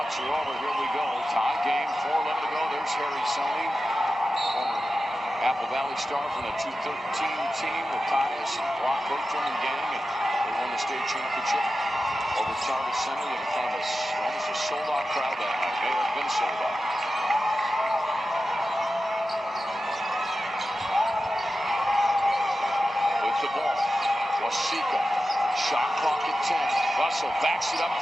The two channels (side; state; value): both; normal; correlation 0.93